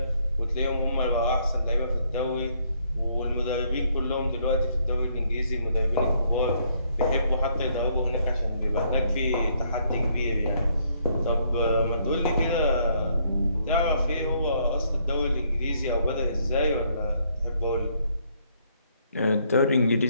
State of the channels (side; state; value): both; inverted; correlation -0.69